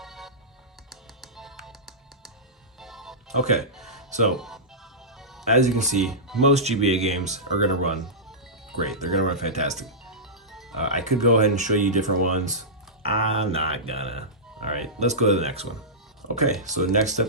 Okay, so as you can see, most GBA games are going to run great. They're going to run fantastic. I could go ahead and show you different ones. I'm not gonna. All right, let's go to the next one. Okay, so next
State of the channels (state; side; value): normal; both; correlation -0.16